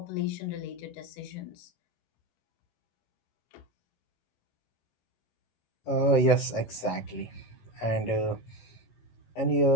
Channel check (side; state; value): right; late; 18 ms